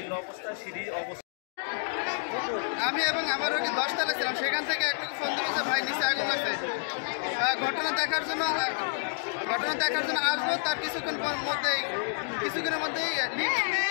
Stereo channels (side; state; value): right; silent; digital silence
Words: অবস্থা, সিঁড়ি অবস্থা। আমি এবং আমার রোগী 10 তলায় ছিলাম, সেখান থেকে একটু ফোন দিয়েছে ভাই নিচে আগুন লাগছে। ঘটনা দেখার জন্য আসবো। তার কিছুক্ষণের মধ্যেই